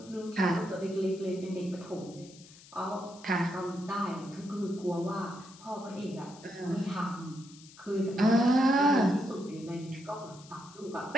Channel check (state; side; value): noise; left; hiss, 21 dB below the sound